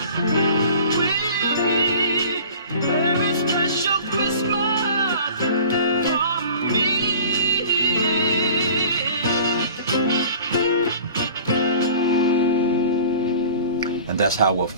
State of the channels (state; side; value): inverted; both; correlation -0.43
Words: And that's how we'll